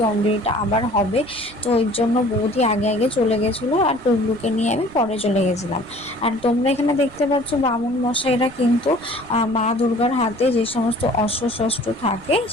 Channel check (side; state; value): right; noise; rumble, 22 dB below the sound